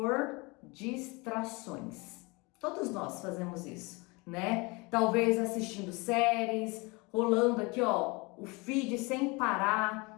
distrações. Todos nós fazemos isso, né? Talvez assistindo séries, rolando aqui, ó, o feed sem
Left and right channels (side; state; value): right; quieter; 26.9 dB